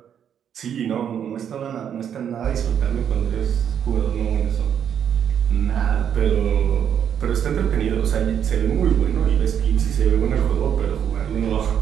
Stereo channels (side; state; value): left; quieter; 8.7 dB